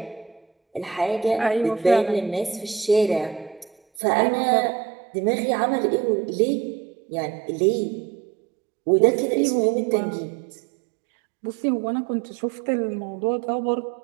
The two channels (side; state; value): left; drops out; at 4.0 s